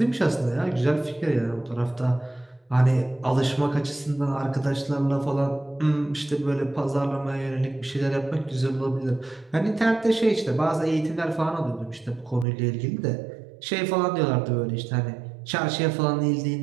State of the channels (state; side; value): drops out; left; at 12.5 s